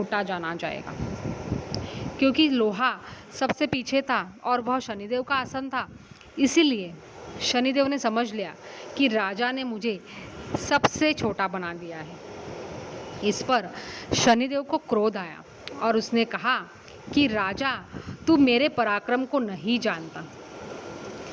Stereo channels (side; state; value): both; identical; correlation 1.00